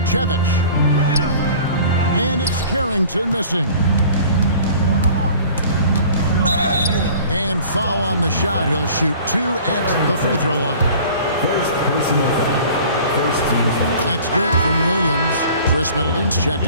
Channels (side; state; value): both; inverted; correlation -0.47